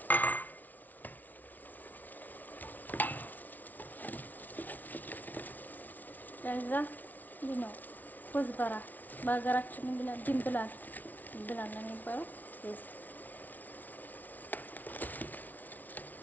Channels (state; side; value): late; right; 0.079 ms